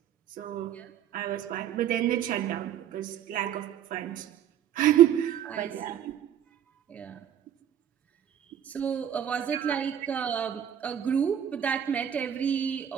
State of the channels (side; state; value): left; quieter; 9.8 dB